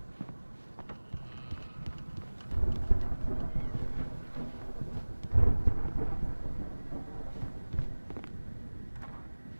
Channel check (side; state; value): both; inverted; correlation -1.00